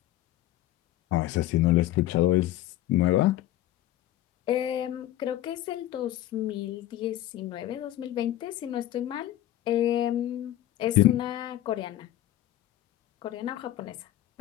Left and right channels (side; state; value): right; quieter; 13.9 dB